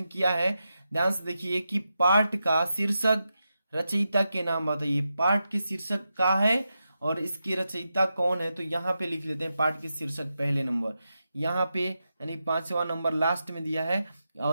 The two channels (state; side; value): inverted; both; correlation -0.88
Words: किया है, ध्यान से देखिए कि पाठ का शीर्षक रचयिता के नाम बताइए। पाठ के शीर्षक का है और इसकी रचयिता कौन है, तो यहाँ पे लिख लेते हैं पाठ के शीर्षक पहले नंबर, यहाँ पे यानी 5वां नंबर लास्ट में दिया है।